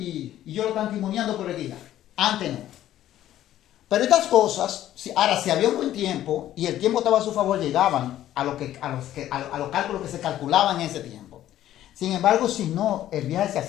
yo lo están timoniando por el día. Antes no. Pero estas cosas, si había un buen tiempo y el tiempo estaba a su favor, llegaban a los cálculos que se calculaban en ese tiempo. Sin embargo, si no, el viaje se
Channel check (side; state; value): right; quieter; 12.7 dB